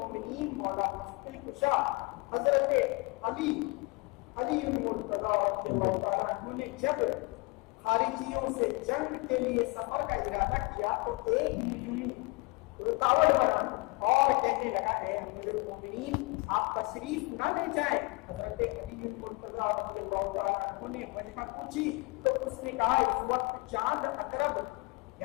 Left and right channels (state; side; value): quieter; right; 27.8 dB